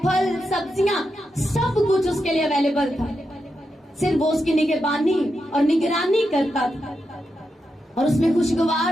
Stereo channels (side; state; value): both; normal; correlation 0.86